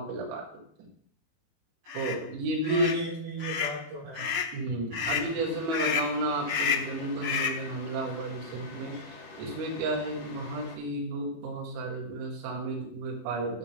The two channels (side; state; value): left; late; 19 ms